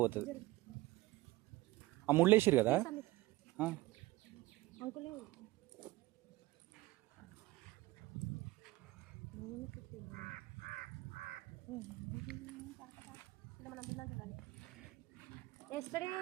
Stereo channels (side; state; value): left; quieter; 18.9 dB